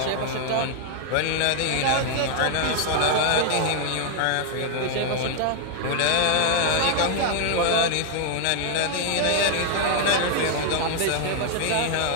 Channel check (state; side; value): different; both; correlation 0.00